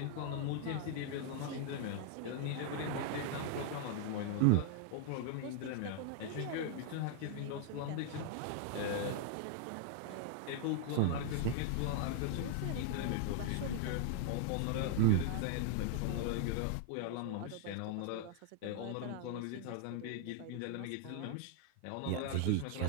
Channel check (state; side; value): different; both; correlation 0.00